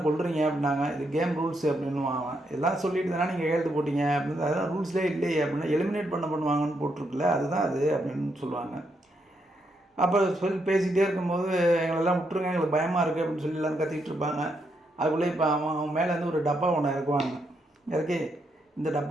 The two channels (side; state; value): both; normal; correlation 0.79